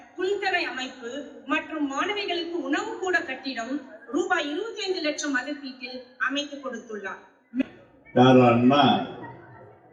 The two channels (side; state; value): both; identical; correlation 1.00